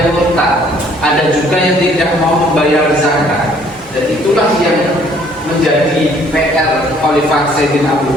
murtad, ada juga yang tidak mau membayar zakat. Dan itulah yang menjadi PR Khalifah Sayyidina Abu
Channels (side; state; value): both; normal; correlation 0.60